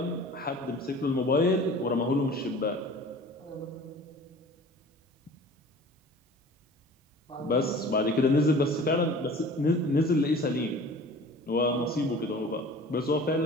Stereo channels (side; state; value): both; normal; correlation 0.44